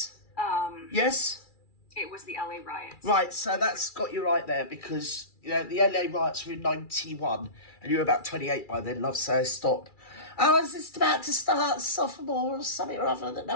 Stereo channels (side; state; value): right; late; 2.3 ms